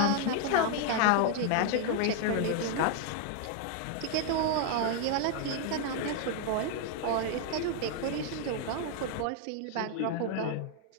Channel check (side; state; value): both; different; correlation 0.00